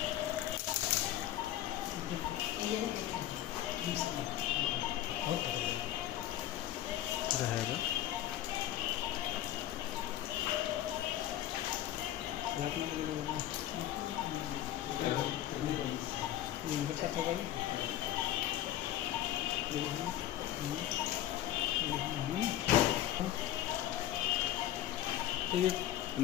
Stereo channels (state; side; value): quieter; right; 12.8 dB